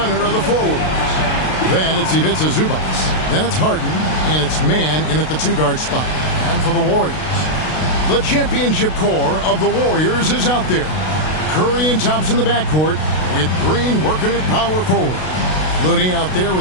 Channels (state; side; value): late; right; 32 ms